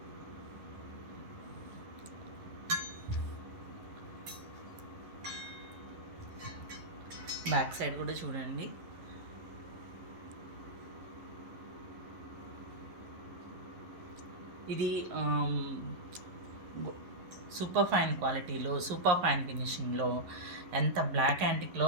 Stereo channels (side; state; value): left; late; 11 ms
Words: బ్యాక్ సైడ్ కూడా చూడండి. ఇది సూపర్ ఫైన్ క్వాలిటీలో, సూపర్ ఫైన్ ఫినిషింగ్లో, ఎంత బ్లాక్ యాంటిక్లో